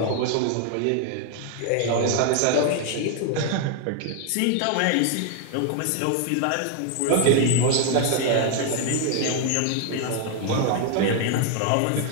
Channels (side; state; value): both; different; correlation 0.00